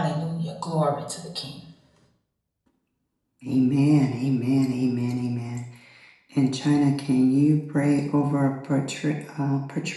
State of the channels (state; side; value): identical; both; correlation 1.00